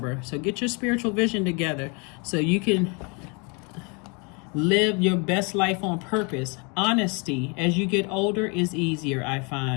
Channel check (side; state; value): right; quieter; 32.4 dB